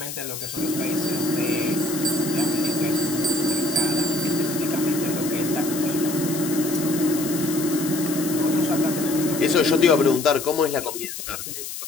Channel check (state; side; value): noise; left; hiss, 8 dB below the sound